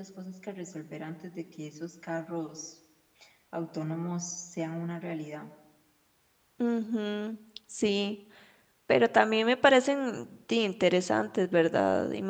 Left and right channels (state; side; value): identical; both; correlation 1.00